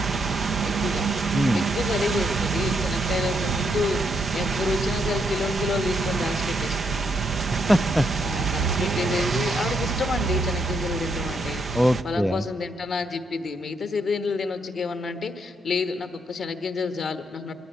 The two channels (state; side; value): normal; both; correlation 0.77